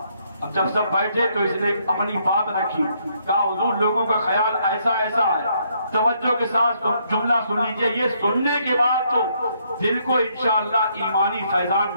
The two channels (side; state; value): both; inverted; correlation -0.72